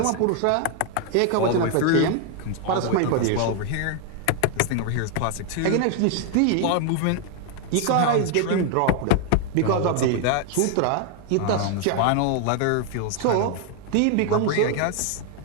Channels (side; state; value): both; different; correlation 0.00